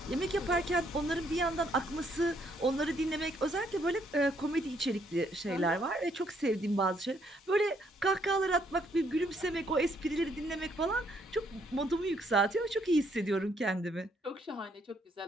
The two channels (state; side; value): normal; both; correlation 0.70